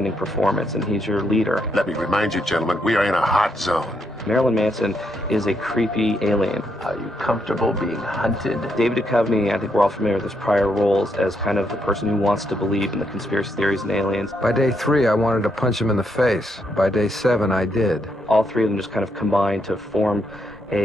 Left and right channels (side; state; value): both; normal; correlation 0.78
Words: performance, and he's your leader. Let me remind you, gentlemen, we are in a hot zone. Marilyn Manson is a creepy alien. Are you comfortable being hunted? David Duchovny, I think we're all familiar with his prior roles as kind of the person who wants to believe in the conspiracy theories and aliens. By day 3, I wanted to punch him in the face. By day 7, I did. All three of them just kind of combine to form